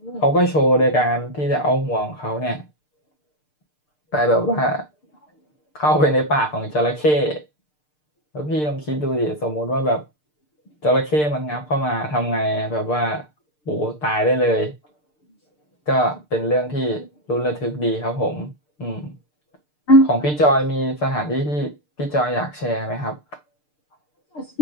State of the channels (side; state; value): right; late; 6.7 ms